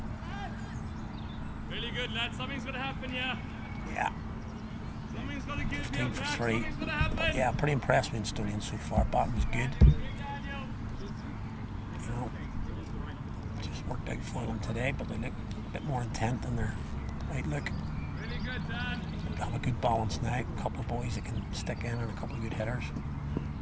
Really good, lads. Something's going to happen here. Yeah. Something's going to give 15 for 3. But yeah, pretty impressed with Instonians so far. Batting was good. You know, just worked out for them today, but they look a bit more intent in their outlook. Really good, Dan. Have a good balance now. A couple of boys that can stick in and a couple of good hitters. So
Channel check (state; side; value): identical; both; correlation 1.00